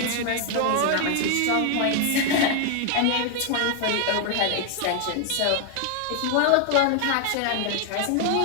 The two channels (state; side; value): different; both; correlation 0.00